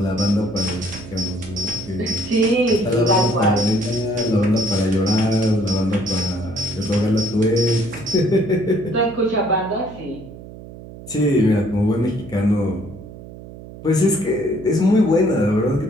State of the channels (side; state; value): right; noise; hum, 15 dB below the sound